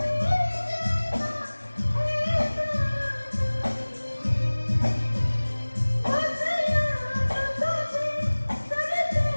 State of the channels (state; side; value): inverted; both; correlation -1.00